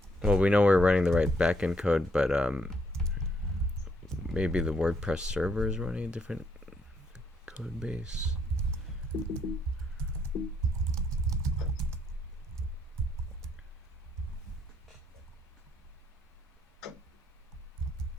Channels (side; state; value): both; normal; correlation 0.72